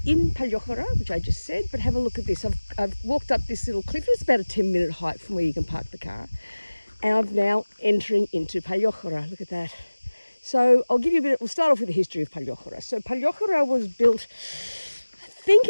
in Paliochiora, which I just said, but have a look at this. I've walked up this little cliff. It's about a 10-minute hike from where you can park the car. And I'm now entering into Paliochiora. Look at that. So I'll give you a bit, we'll start off with the history of Paliochiora. So Paliochiora was built, I think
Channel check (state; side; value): inverted; both; correlation -1.00